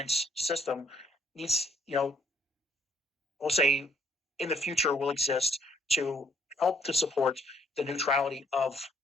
system needs, we'll say, in the future will exist to help to support the neutrality of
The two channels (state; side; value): normal; both; correlation 0.66